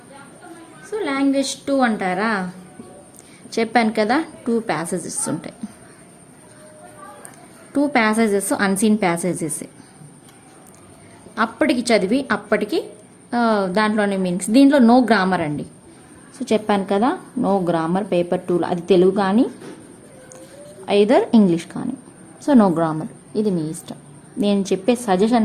సో లాంగ్వేజ్ 2 అంటారా, చెప్పాను కదా 2 ప్యాసేజెస్ ఉంటాయి. 2 ప్యాసేజెస్ అన్సీన్ ప్యాసేజెస్. అప్పటికి చదివి అప్పటికి దాంట్లోనే మీనింగ్స్. దీంట్లో నో గ్రామర్ అండి. సో చెప్పాను కదా నో గ్రామర్ పేపర్ 2లో, అది తెలుగు కానీ ఐదర్ ఇంగ్లీష్ కానీ. సో నో గ్రామర్, ఇది మీ ఇష్టం. నేను చెప్పే సజెషన్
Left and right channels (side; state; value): both; identical; correlation 1.00